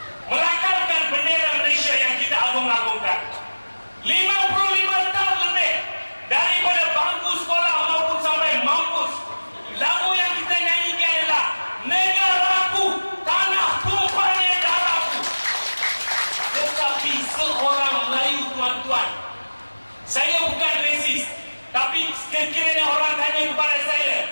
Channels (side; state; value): both; inverted; correlation -1.00